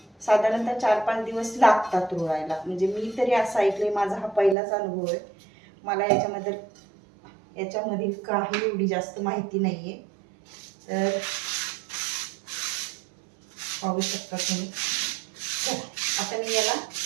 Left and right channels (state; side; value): drops out; left; at 4.5 s